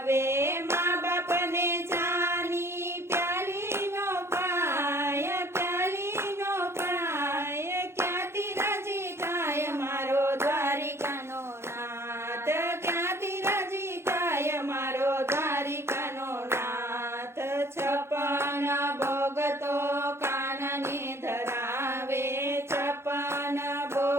મા બાપને ચાની પ્યાલી નો પાય, પ્યાલી નો પાય, ક્યાંથી રાજી થાય મારો દ્વારિકાનો નાથ. ક્યાંથી રાજી થાય મારો દ્વારિકાનો નાથ. છપ્પન ભોગ તો કાનાને ધરાવે, છપ્પન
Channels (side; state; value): left; late; 0.12 ms